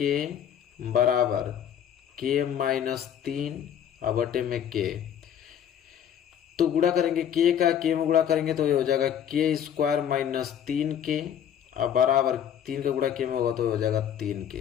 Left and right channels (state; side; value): quieter; right; 9.2 dB